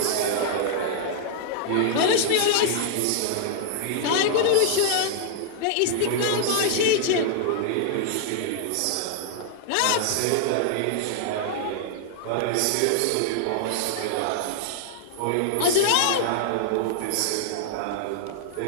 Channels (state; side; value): different; both; correlation -0.01